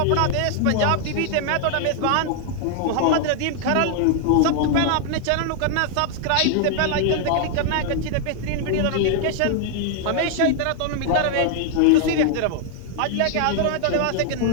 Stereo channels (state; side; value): different; both; correlation 0.00